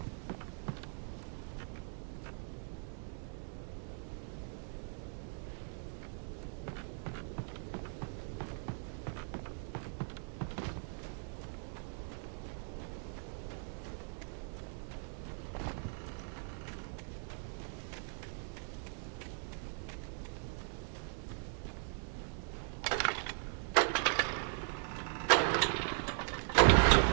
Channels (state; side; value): silent; left; 52 dB below the other